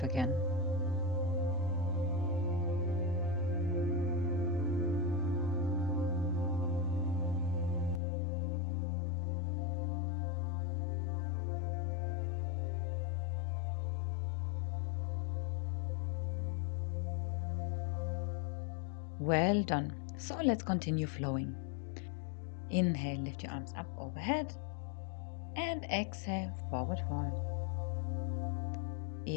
again. Well done. So let's continue flowing. Inhale, lift your arms up overhead. And exhale, forward fold.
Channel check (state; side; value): drops out; right; at 8.0 s